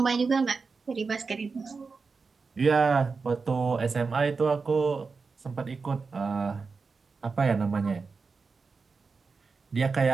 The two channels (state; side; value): quieter; left; 4.6 dB